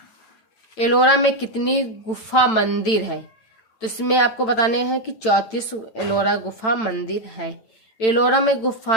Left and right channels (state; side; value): late; right; 9.0 ms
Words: एलोरा में कितनी गुफा मंदिर है? तो इसमें आपको बताने हैं कि 34 एलोरा गुफा मंदिर है। एलोरा में